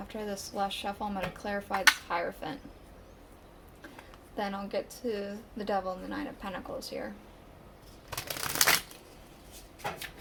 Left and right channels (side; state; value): both; identical; correlation 1.00